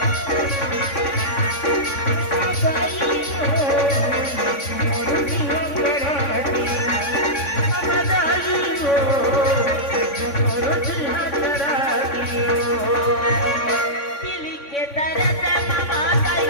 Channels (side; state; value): right; late; 3.6 ms